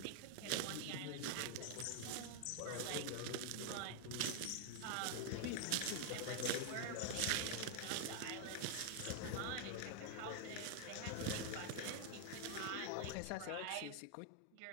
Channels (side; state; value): both; different; correlation 0.00